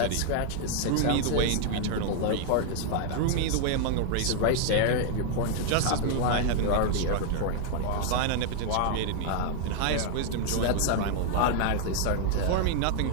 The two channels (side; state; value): both; different; correlation 0.00